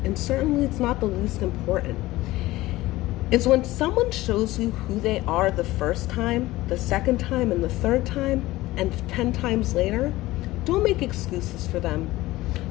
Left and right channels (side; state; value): right; quieter; 17.9 dB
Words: and certainly it's not the least important, is when someone shows you who they are the first time, the second time, and the third time, and 10 times later, don't make excuses for them.